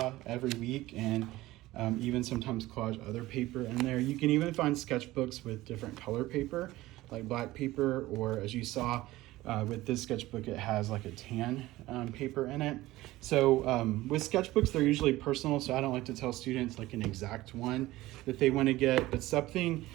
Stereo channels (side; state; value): left; quieter; 17.5 dB